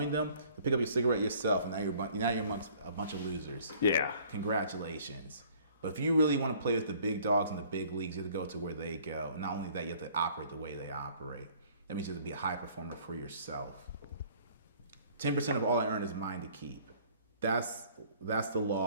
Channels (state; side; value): inverted; both; correlation -0.55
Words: them, to pick up your cigarette yourself, and now you're amongst a bunch of losers. Yeah. Congratulations. But if you really want to play with the big dogs in the big leagues, you have to go to where they go. And not only that, you have to operate the way they operate. That means you have to be a high performer for yourself. 10% of all I earn is mine to keep. That's the